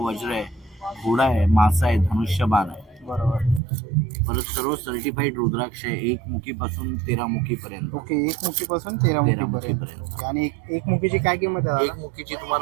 आहे, घोडा आहे, मासा आहे, धनुष्यबाण आहे. बरोबर. परत सर्व सर्टिफाईड रुद्राक्ष आहे, 1 मुखीपासून 13 मुखीपर्यंत. ओके. 1 मुखीपासून 13 मुखीपर्यंत. मुखीपर्यंत. आणि एक मुखीची काय किंमत आहे? 1 मुखीची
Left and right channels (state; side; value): drops out; left; at 3.6 s